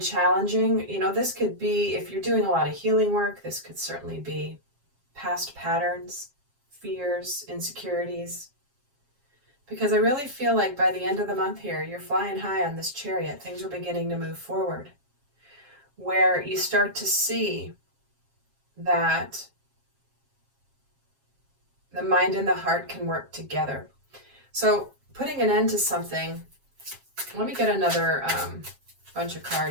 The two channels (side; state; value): left; late; 7.4 ms